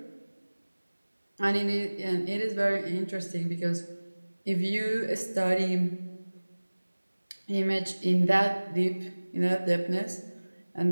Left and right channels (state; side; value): inverted; both; correlation -1.00